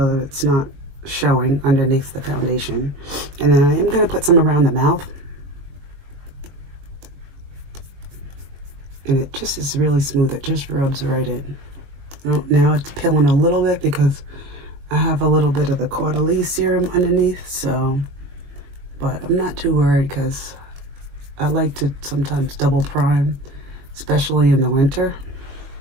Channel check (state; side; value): late; left; 21 ms